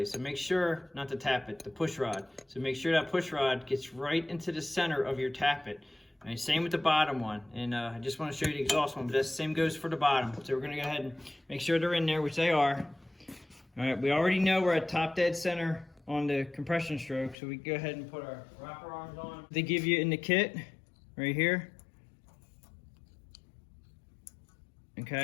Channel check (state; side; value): drops out; right; at 17.4 s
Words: So make sure, not to tap it, the push rod. So make sure that push rod gets right into the center of your tappet. Right, same with the bottom one. And I just want to show you the exhaust one, but the same goes for the bottom. So we're gonna go ahead and make sure they're in there, which they are. All right, we already know we're at top dead center on the compression stroke, so we can go ahead and put our rocker arms on. They give you in the kit, right here.